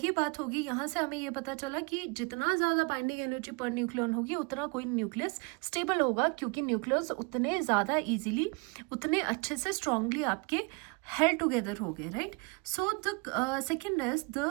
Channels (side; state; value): left; quieter; 30.8 dB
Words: बात होगी, यहाँ से हमें ये पता चला कि जितना ज़्यादा बाइंडिंग एनर्जी पर न्यूक्लियन होगी उतना कोई न्यूक्लियस स्टेबल होगा, क्योंकि न्यूक्लियस उतने ज़्यादा इजीली, उतने अच्छे से स्ट्रांगली आपके हेल्ड टुगेदर हो गए, right. So the second is